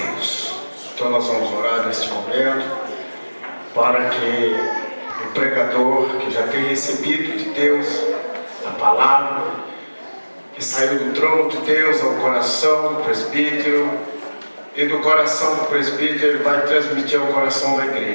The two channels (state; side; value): inverted; both; correlation -1.00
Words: Então nós vamos orar neste momento para que o pregador, que já tem recebido de Deus a palavra, que saiu do trono de Deus ao coração do presbítero, e do coração do presbítero ele vai transmitir ao coração da